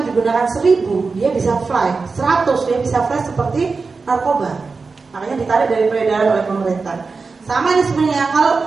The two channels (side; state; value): left; quieter; 4.4 dB